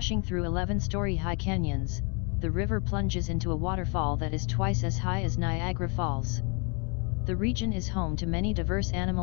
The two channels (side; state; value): right; quieter; 34.8 dB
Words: through 11-story high canyons, the river plunges into a waterfall that is twice as high as Niagara Falls. The region is home to many diverse